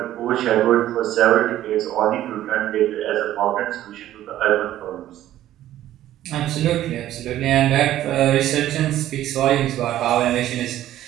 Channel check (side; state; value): left; quieter; 13.2 dB